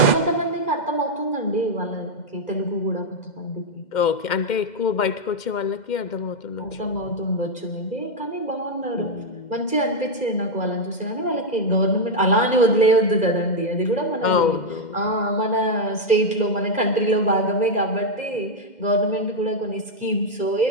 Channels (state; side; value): late; right; 2.1 ms